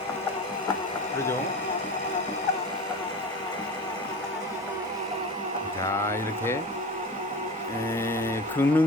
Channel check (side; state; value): both; normal; correlation 0.32